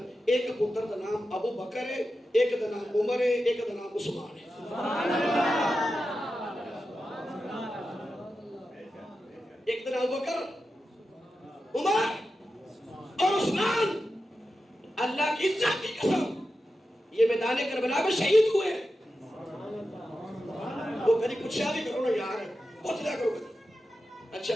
ایک پتر دا نام ابو بکر ہے ایک دا نام عمر ہے ایک دا نام عثمان ہے ایک دا نام ابو بکر عمر اور عثمان اللہ کی عزت کی قسم یہ میدان کربلا میں شہید ہوئے ہیں وہ کبھی کچھ بھی کرو نا یار بہت زیادہ کرو کبھی اچھا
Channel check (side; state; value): both; normal; correlation 0.91